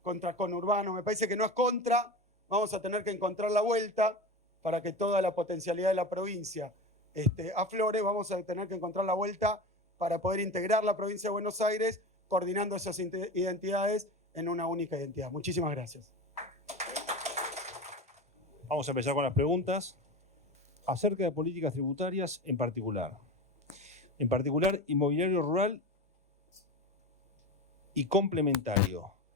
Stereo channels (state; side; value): normal; both; correlation 0.27